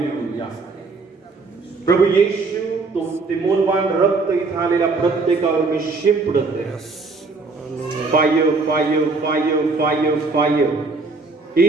प्रभू येशू, तो ते मौल्यवान रक्त इथं आलेल्या प्रत्येकावर मी शिंपडत आहे. Fire fire fire fire fire.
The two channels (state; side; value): quieter; left; 3.9 dB